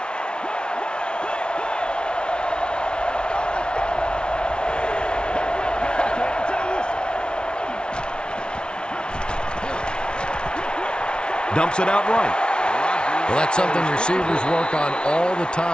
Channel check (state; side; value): late; right; 0.056 ms